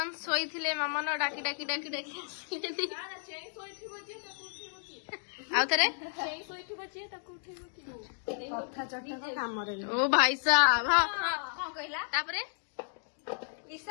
शोले मामन डाकी डाकी डाकी डाकी आउ थे ओ भाई साहब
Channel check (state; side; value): silent; right; digital silence